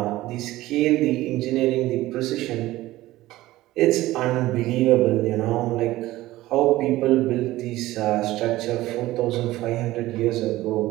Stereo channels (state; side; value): quieter; left; 16.8 dB